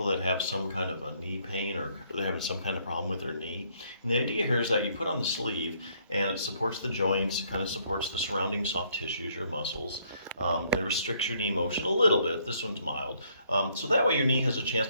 that have some kind of a knee pain or they're having some kind of problem with their knee. And the idea here is that you put on the sleeve and it supports the joints, kind of supports the surrounding soft tissues or muscles, and it restricts your knee motion a little bit. This one's mild. So that way your knee has a chance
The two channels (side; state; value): both; inverted; correlation -0.68